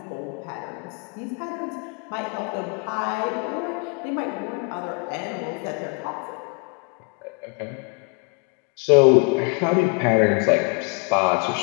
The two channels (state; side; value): quieter; right; 34.8 dB